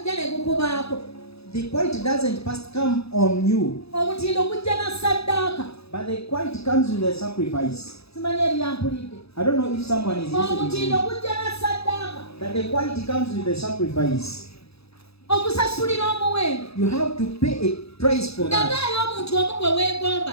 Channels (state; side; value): late; right; 0.78 ms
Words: The quality doesn't first come on you, but the quality comes with the sacrifice. I don't know if someone is listening. That the quality comes with the sacrifice. You have to pay a price for that.